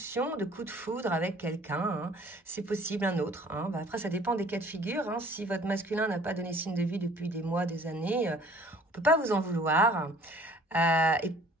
de coup de foudre avec quelqu'un. Hein. C'est possible, un autre. Hein. Bah, après, ça dépend des cas de figure. Hein. Si votre masculin n'a pas donné signe de vie depuis des mois, des années, on ne peut pas vous en vouloir. Et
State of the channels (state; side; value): normal; both; correlation 0.54